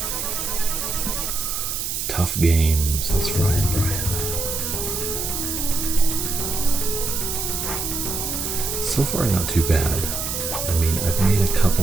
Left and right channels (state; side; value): noise; right; hiss, 3 dB below the sound